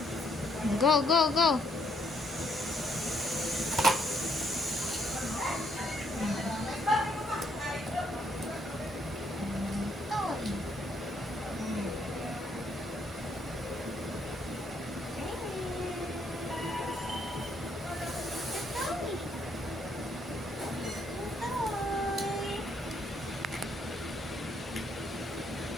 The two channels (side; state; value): both; normal; correlation 0.71